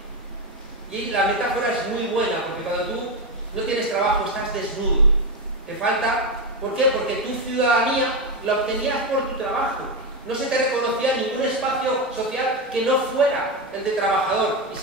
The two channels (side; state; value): both; normal; correlation 0.10